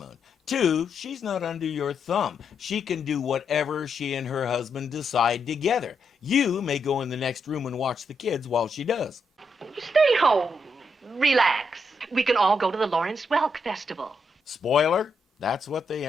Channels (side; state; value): both; normal; correlation 0.80